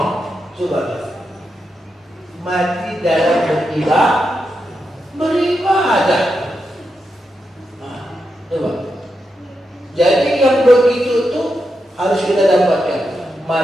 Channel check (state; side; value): normal; both; correlation 0.86